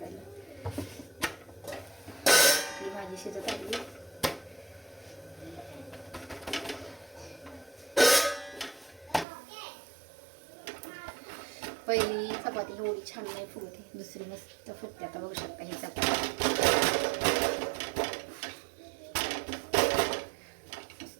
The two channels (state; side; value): drops out; left; at 9.2 s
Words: ही भाजी शिजत आली. पहिली चपाती एवढी छान नाही फुगते, दुसरी मस्त फुगते. आता बघू शकता ही चपाती